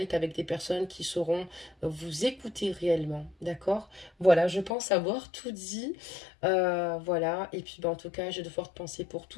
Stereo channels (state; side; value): drops out; right; at 4.7 s